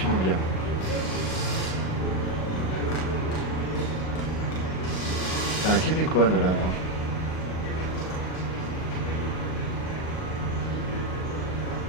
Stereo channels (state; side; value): late; right; 38 ms